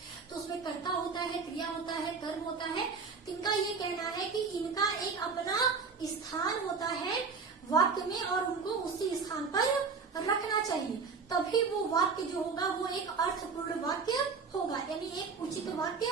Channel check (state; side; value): quieter; left; 5.0 dB